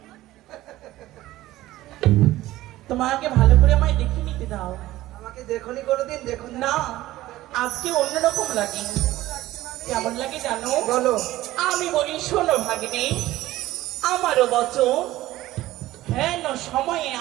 তোমাকে ভালো করে আমায় দেখে নিতে দাও। আমাকে দেখনি কোনোদিন দেখুন না, আজকে অন্যরকম লাগে। কেমন লাগে জানো? বলো। আমি বলি শোনো ভাগ্নে, আমারও বচন হেন সময়ে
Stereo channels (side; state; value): left; quieter; 16.1 dB